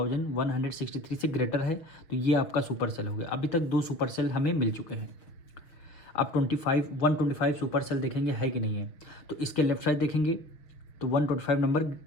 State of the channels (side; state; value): right; late; 6.4 ms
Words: से ग्रेटर है, तो ये आपका सुपर सेल हो गया। अभी तक 2 सुपर सेल हमें मिल चुके हैं। अब 125 सुपर सेल देखेंगे है कि नहीं है। तो इसके लेफ्ट साइड देखेंगे तो 125 नंबर